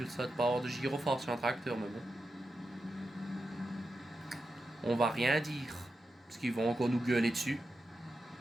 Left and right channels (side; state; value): both; normal; correlation 0.89